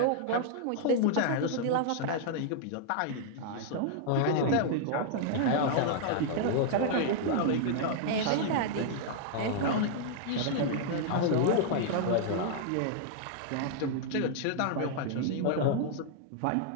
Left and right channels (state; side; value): different; both; correlation -0.01